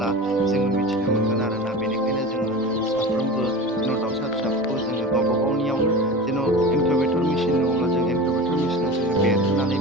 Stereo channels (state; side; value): normal; both; correlation 0.32